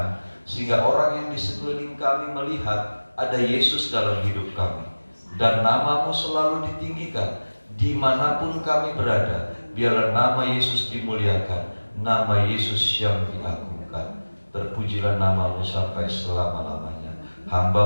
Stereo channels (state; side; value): inverted; both; correlation -1.00